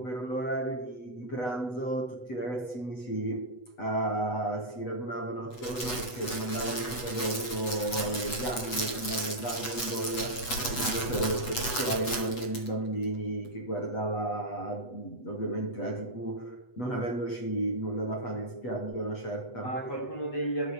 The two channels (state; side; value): late; right; 8.1 ms